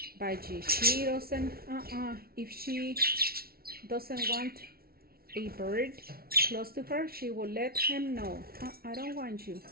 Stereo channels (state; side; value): late; left; 0.44 ms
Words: budgie. She doesn't, if she doesn't want a bird close to her, she will let him know. I don't want you.